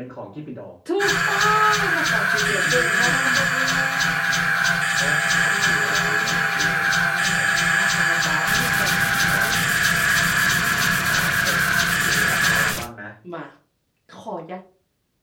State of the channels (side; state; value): both; identical; correlation 1.00